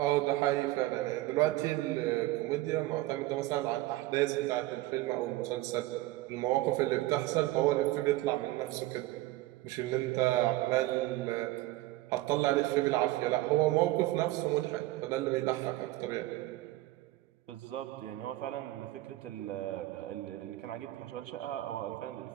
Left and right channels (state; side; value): quieter; left; 17.5 dB